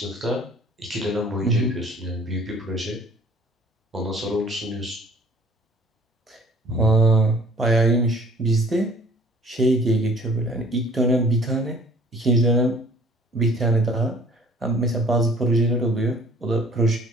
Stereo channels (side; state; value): both; normal; correlation 0.53